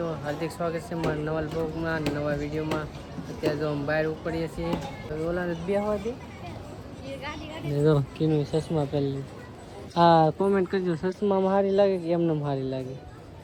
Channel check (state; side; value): identical; both; correlation 1.00